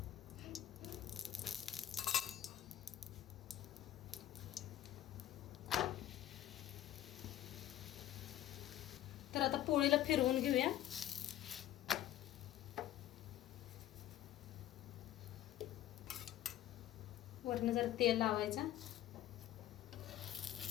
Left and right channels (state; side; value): quieter; right; 12.7 dB